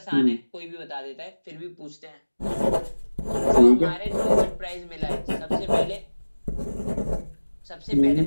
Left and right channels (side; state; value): both; inverted; correlation -1.00